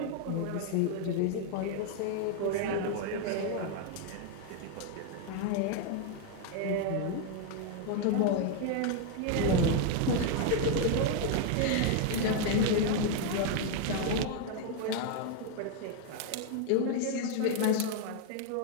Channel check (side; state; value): both; different; correlation 0.01